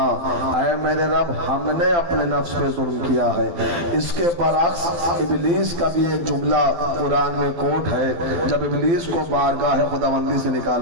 اے میرے رب ہم نے اپنے نفس پہ ظلم کیا ہے اس کے برعکس ابلیس کا بھی ایک جملہ قرآن میں کوٹ ہے جب ابلیس کو بارگاہ خداوندی سے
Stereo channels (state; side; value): late; left; 12 ms